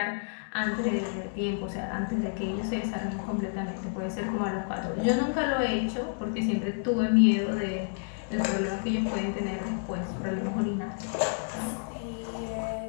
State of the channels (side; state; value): right; silent; digital silence